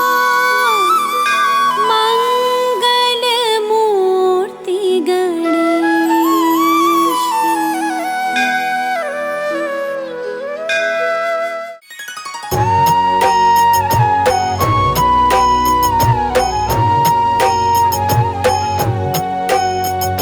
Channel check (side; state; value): both; identical; correlation 1.00